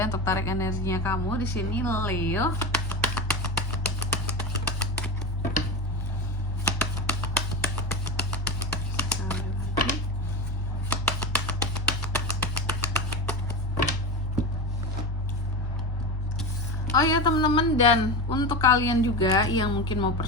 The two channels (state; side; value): normal; both; correlation 0.24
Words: untuk tarik energinya kamu di sini Leo. Oh ya teman-teman, dan untuk kalian juga yang mungkin mau